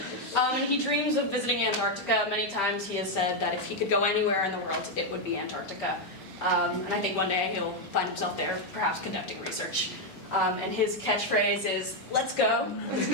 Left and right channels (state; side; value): normal; both; correlation 0.02